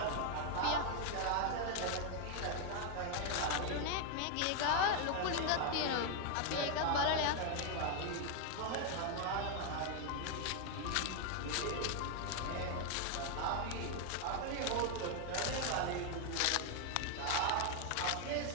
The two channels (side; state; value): both; different; correlation 0.00